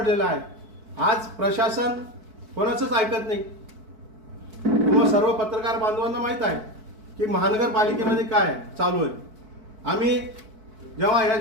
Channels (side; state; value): left; late; 4.6 ms